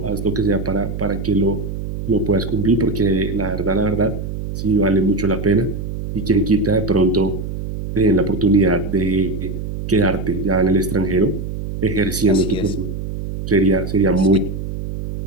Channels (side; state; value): right; noise; hum, 6 dB below the sound